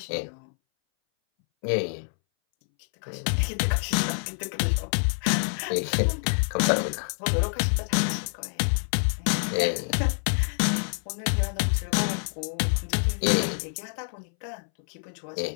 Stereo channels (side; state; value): right; silent; 60 dB below the other